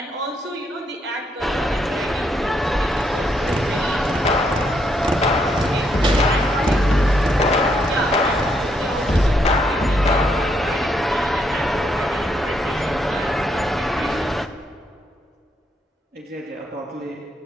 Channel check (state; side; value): normal; both; correlation 0.76